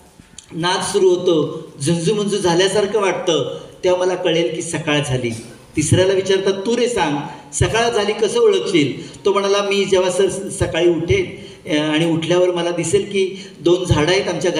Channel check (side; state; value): both; identical; correlation 1.00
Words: नाद सुरू होतो, झुंजूमुंजू झाल्यासारखं वाटतं, तेव्हा मला कळेल की सकाळ झाली. तिसऱ्याला विचारतात, तू रे सांग सकाळ झाली कसं ओळखशील. तो म्हणाला, मी जेव्हा सकाळी उठेन आणि उठल्यावर मला दिसेल की 2 झाडं आहेत आमच्या